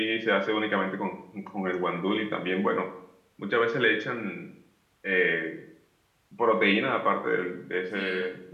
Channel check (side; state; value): both; identical; correlation 1.00